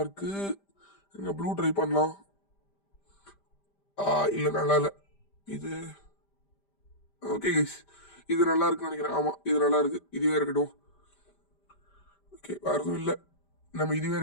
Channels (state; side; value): late; right; 5.1 ms